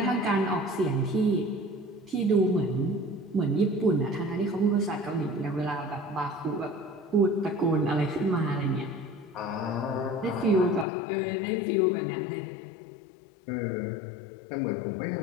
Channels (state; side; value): drops out; right; at 10.9 s